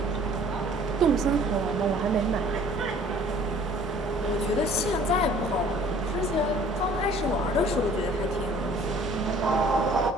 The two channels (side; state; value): both; normal; correlation 0.53